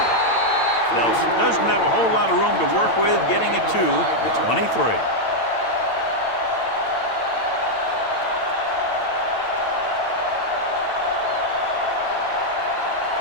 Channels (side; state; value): right; late; 8.9 ms